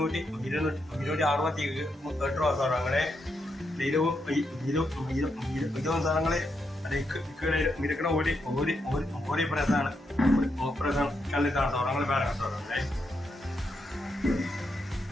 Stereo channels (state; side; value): normal; both; correlation 0.82